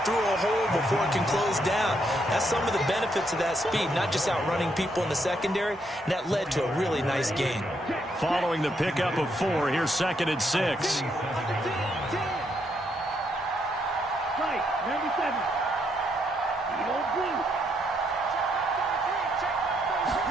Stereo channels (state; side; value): normal; both; correlation 0.75